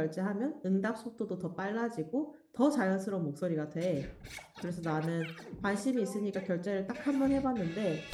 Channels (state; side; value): identical; both; correlation 1.00